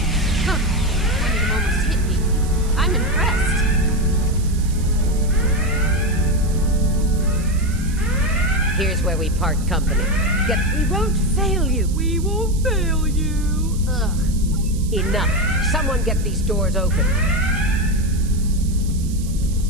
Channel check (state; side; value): noise; right; hiss, 17 dB below the sound